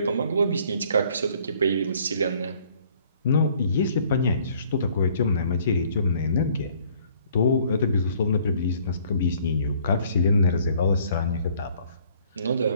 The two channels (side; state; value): both; inverted; correlation -0.60